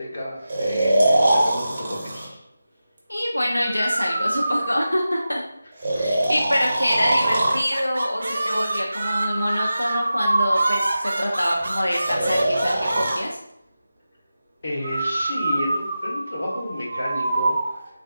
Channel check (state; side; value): inverted; both; correlation -0.93